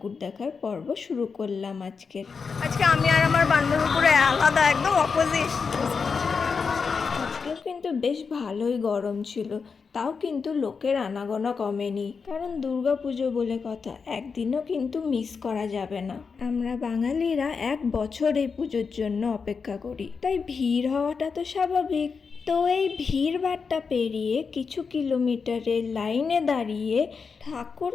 দেখার পর্ব শুরু করলাম। আজকে আমি আর আমার বান্ধবী পুরো আলাদা, একদম অপোজিট। আজকেও কিন্তু বেশ ভালোই গরম ছিল, তাও কিন্তু লোকের আনাগোনা কমেনি। কারণ দুর্গাপুজো বলে কথা, একদিনও কিন্তু মিস করা যাবে না। আমরা বাঙালিরা 1 বছর এই পুজোর জন্য অপেক্ষা করি, তাই ভিড় হওয়াটা তো স্বাভাবিক। তো এই ভিড় ভাট্টা পেরিয়ে কিছু কিলোমিটারের লাইনে দাঁড়িয়ে ঠাকুর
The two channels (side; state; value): right; quieter; 5.3 dB